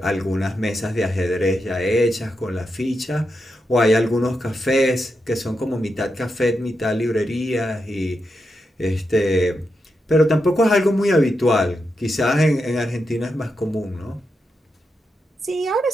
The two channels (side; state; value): both; normal; correlation 0.86